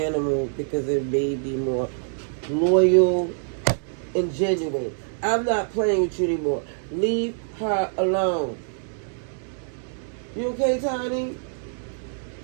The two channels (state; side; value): silent; left; digital silence